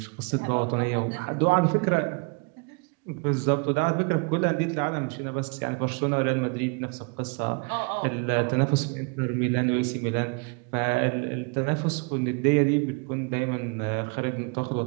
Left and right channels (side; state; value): left; quieter; 33.6 dB